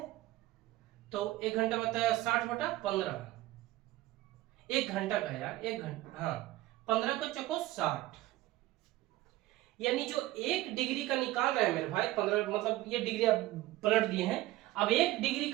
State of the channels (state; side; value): quieter; left; 16.8 dB